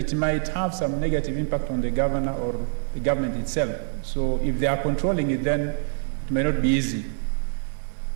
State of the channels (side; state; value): left; silent; digital silence